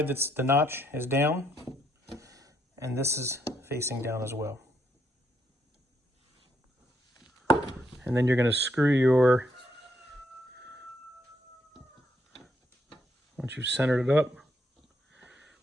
that's the notch is down, and this is facing down as well. And then you're going to screw once you've centered it up.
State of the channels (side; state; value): both; normal; correlation 0.74